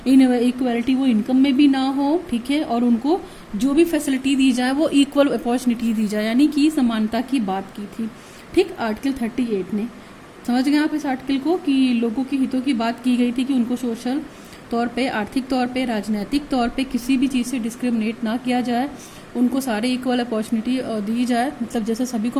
इनइक्वालिटी वो इनकम में भी ना हो, ठीक है, और उनको जो भी फैसिलिटी दी जाए वो इक्वल अपॉर्चुनिटी दी जाए, यानी कि समानता की बात की थी, ठीक। आर्टिकल 38 ने, समझ गए आप इस आर्टिकल को, कि लोगों की हितों की बात की गई थी कि उनको सोशल तौर पे, आर्थिक तौर पे, राजनीतिक तौर पे किसी भी चीज़ से डिस्क्रिमिनेट ना किया जाए, उनको सारे इक्वल अपॉर्चुनिटी दी जाए, मतलब जैसे सभी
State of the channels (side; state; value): both; identical; correlation 1.00